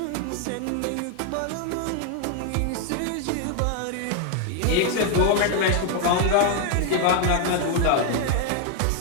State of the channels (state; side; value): different; both; correlation 0.00